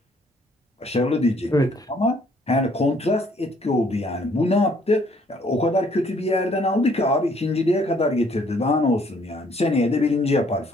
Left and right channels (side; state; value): both; normal; correlation 0.63